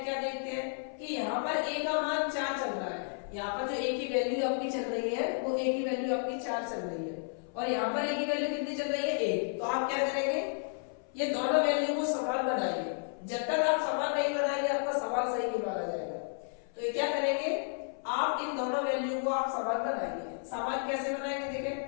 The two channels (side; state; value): right; silent; 56 dB below the other